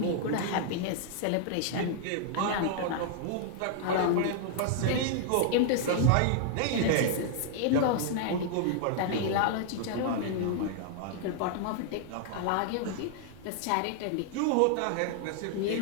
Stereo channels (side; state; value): both; different; correlation 0.00